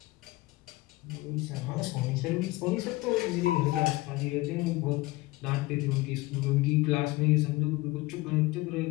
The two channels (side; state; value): right; quieter; 20.5 dB